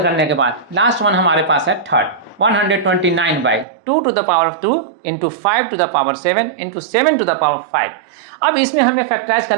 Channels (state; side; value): drops out; left; at 3.7 s